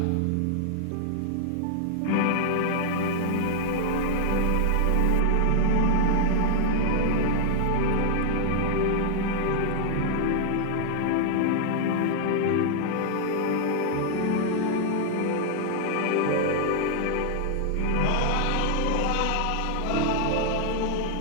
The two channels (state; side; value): different; both; correlation -0.01